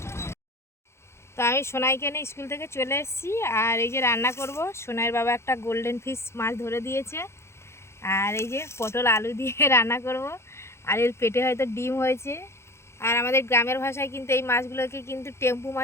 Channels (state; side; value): late; right; 0.13 ms